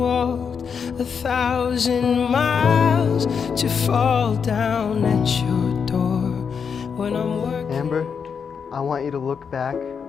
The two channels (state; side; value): quieter; right; 6.4 dB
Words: 1,000 miles, to fall down at your door when I'm working. Amber, I want you to look back